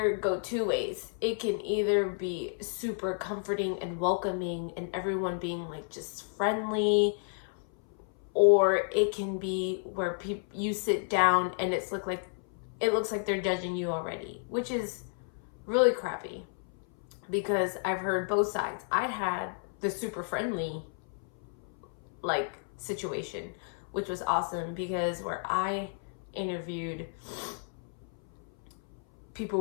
go two ways. It can either be super comforting and welcoming and everyone being like just friendly, or it can be where you sit down and it looks like they're judging you already, which is really crappy because I've heard both sides. I'd had the super friendly like situation, which was awesome because where I interviewed,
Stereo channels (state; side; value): silent; right; 57 dB below the other